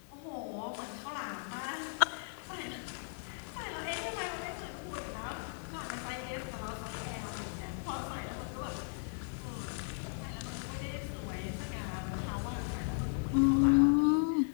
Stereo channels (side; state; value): right; silent; digital silence